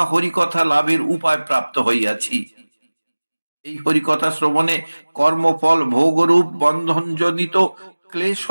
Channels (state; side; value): inverted; both; correlation -1.00